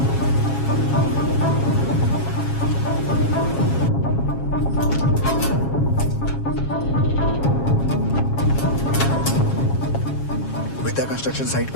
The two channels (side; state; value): right; late; 7.3 ms